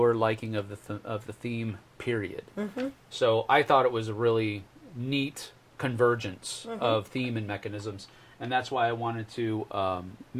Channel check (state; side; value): identical; both; correlation 1.00